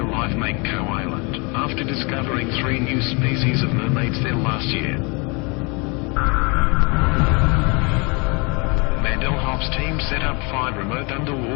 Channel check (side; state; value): right; quieter; 30.2 dB